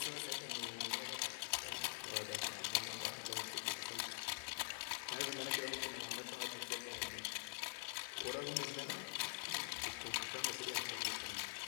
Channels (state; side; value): silent; right; digital silence